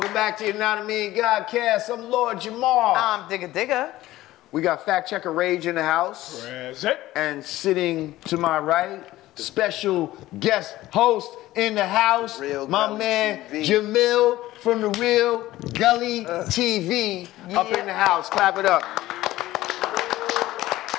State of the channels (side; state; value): right; quieter; 16.1 dB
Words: back to Yanadameen Godcast. I'm Lord Jamar. I'm Digga Digga. We got fact checker Rage in the house. Present. And sitting to my right, special guest host in the house, Real my Gully man TV. Jamil from the Real Gully TV up in the house. Clap it up.